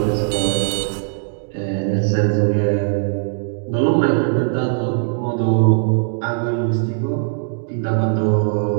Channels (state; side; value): silent; left; digital silence